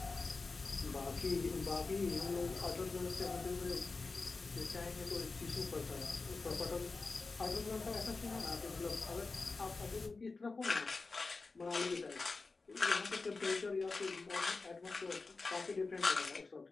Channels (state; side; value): quieter; right; 3.9 dB